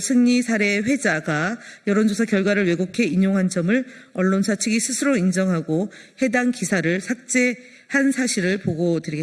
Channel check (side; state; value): both; identical; correlation 1.00